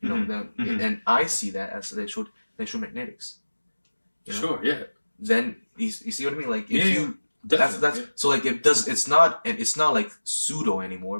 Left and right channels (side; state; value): both; inverted; correlation -1.00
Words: know, and I see that as electromagnetics. You know? Sure, yeah. Then you see what I mean? Like if you definitely, that's so like it does. It's not like pseudo anymore